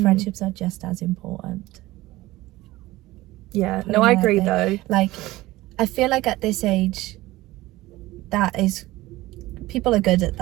friendships are just as important. Yeah, no, I agree though. Like, I feel like at this age, that is, people are good at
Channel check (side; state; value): left; quieter; 18.2 dB